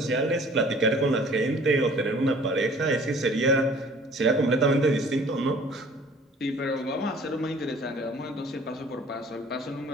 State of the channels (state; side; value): normal; both; correlation 0.51